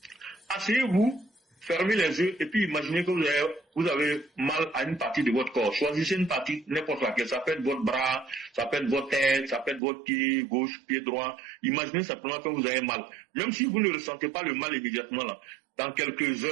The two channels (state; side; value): drops out; left; at 9.8 s